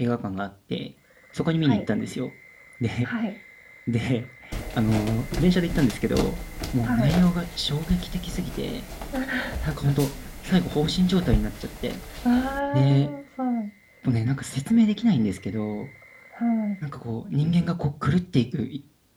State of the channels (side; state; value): both; identical; correlation 1.00